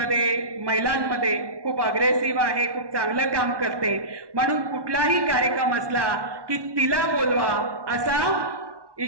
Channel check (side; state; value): left; late; 1.1 ms